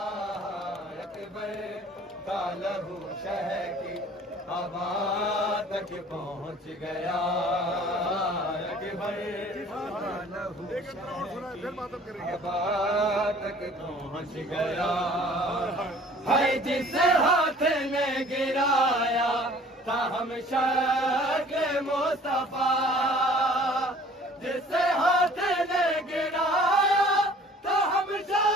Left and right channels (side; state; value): both; normal; correlation 0.51